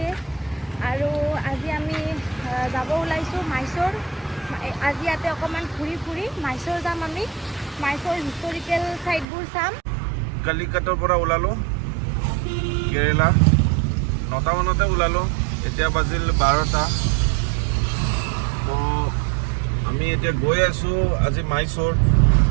আৰু আজি আমি যাব ওলাইছোঁ মাইচৰ। আজি ইয়াতে অকণমান ঘূৰি ফুৰি মাইচৰ যাম। আমি মাইচৰ হিষ্টৰিকেল চাইটবোৰ চাম। কালিকাটৰ পৰা ওলালোঁ কেৰেলা 9টা মানতে ওলালোঁ। এতিয়া বাজিল 12টা। তো আমি এতিয়া গৈ আছোঁ আজি মাইচৰ।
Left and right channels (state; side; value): drops out; left; at 9.2 s